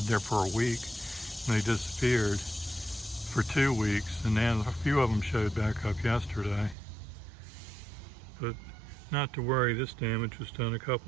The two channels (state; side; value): drops out; left; at 6.8 s